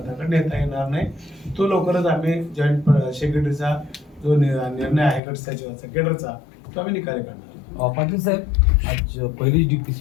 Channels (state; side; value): drops out; right; at 5.2 s